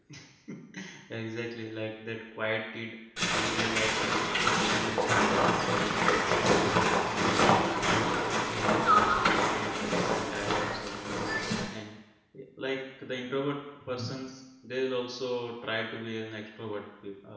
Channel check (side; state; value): both; identical; correlation 1.00